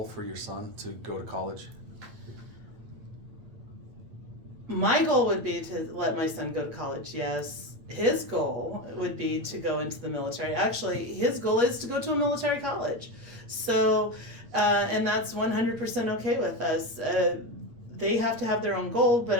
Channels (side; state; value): left; late; 8.8 ms